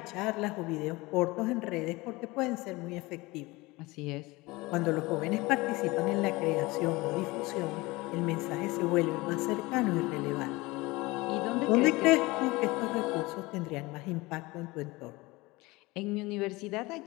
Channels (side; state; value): right; quieter; 22.2 dB